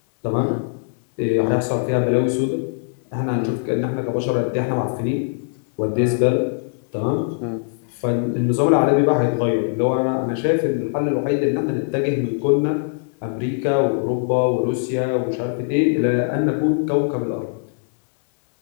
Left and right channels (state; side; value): silent; right; 65 dB below the other